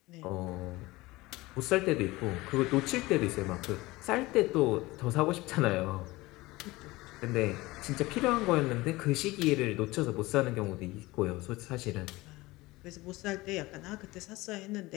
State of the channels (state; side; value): quieter; right; 20.4 dB